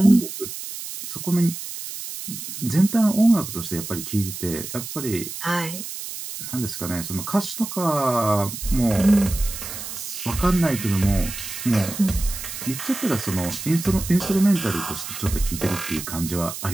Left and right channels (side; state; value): right; noise; hiss, 8 dB below the sound